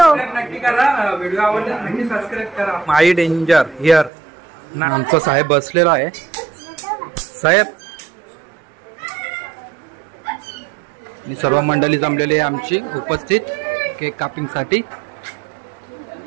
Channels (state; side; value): drops out; left; at 4.1 s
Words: माई डेंजर हिअर. आमचा साहेब बसलेला आहे. साहेब आणि सर्व मंडळी जमलेली आहे आमची उपस्थित केक कापिंग साठी.